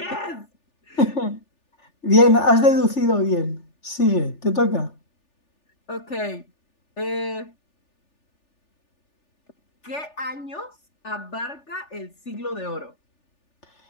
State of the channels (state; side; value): late; right; 3.4 ms